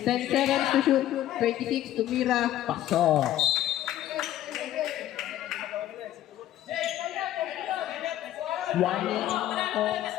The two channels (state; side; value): quieter; right; 12.9 dB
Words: 10 seconds to shoot. 26. Tumira. Pasok. Warning po.